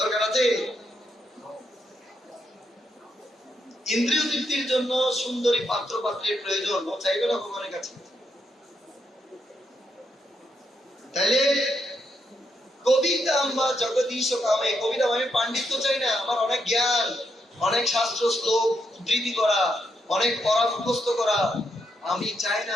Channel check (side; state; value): both; normal; correlation 0.79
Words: আছে? ইন্দ্রিয় তৃপ্তির জন্য সুন্দরী পাত্র পাত্রের প্রয়োজন, ও চাইবে না ভগবানের কাছে? তাহলে কবিতা বা জগদীশ কামে, কবিতা আমি পাণ্ডিত্য চাই না, আমার অনেক জ্ঞান, অনেক শাস্ত্র শ্লোক উদ্ধৃতি করা, অনেক পড়া মুখস্থ করা আমি চাই